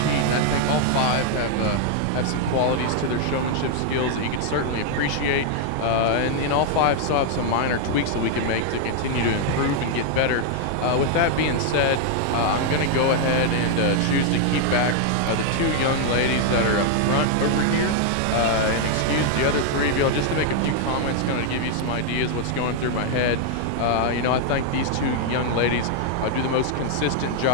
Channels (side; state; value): both; different; correlation 0.00